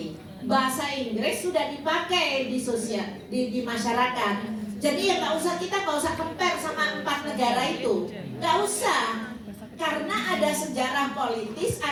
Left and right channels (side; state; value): both; identical; correlation 1.00